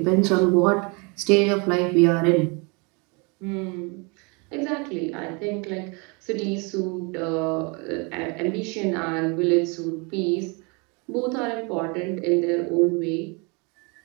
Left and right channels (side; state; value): left; quieter; 31.3 dB